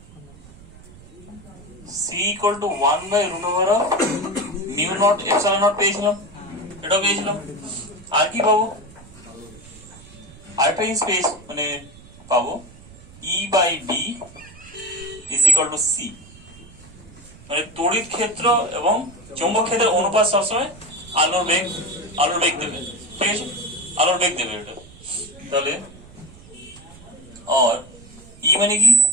c = 1/√μ0 ε0 পেয়েছিলাম, এটাও পেয়েছিলাম। আর কি পাবো? আরেকটা জিনিস মানে পাবো E/B = c, মানে তড়িৎ ক্ষেত্র এবং চৌম্বক ক্ষেত্রের অনুপাত সবসময় আলোর বেগ দেবে, ঠিক আছে? আলোর বেগ দেবে এটা। তাহলে আর ই মানে কি?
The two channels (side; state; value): right; noise; rumble, 21 dB below the sound